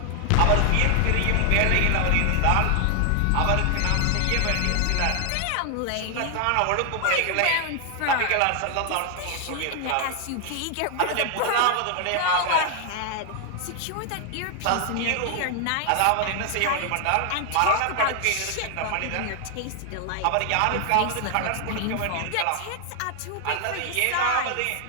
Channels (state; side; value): different; both; correlation 0.00